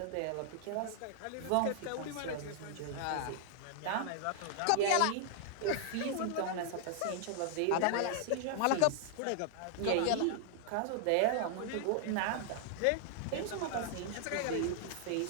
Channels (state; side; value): different; both; correlation -0.01